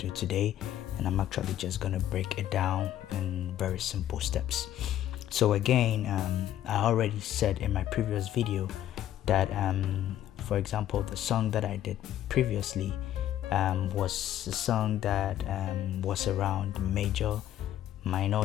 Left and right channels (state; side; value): quieter; right; 11.9 dB